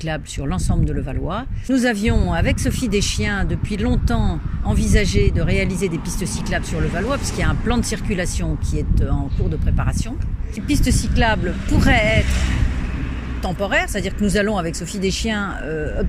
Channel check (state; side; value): identical; both; correlation 1.00